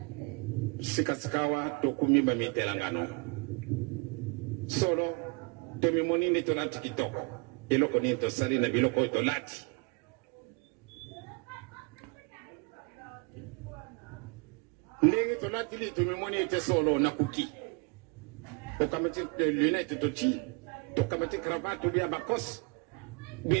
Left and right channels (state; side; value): quieter; left; 31.7 dB